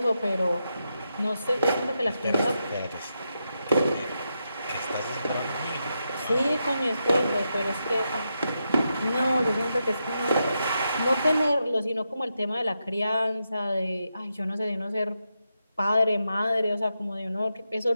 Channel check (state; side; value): inverted; both; correlation -0.85